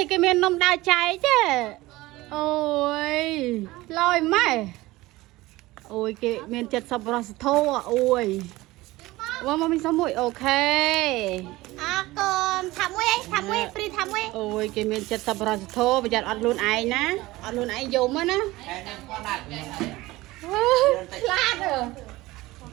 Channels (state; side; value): quieter; left; 19.1 dB